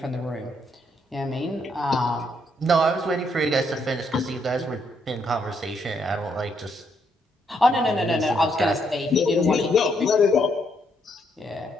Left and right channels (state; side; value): normal; both; correlation 0.74